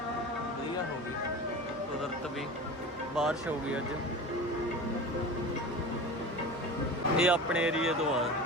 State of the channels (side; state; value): both; normal; correlation 0.33